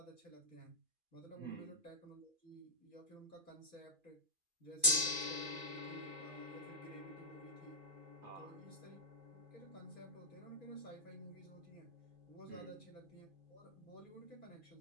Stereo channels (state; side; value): late; left; 2.4 ms